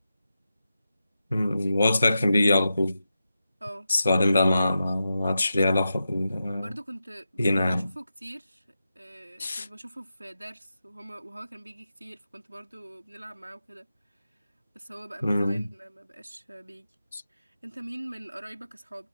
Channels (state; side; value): inverted; both; correlation -0.90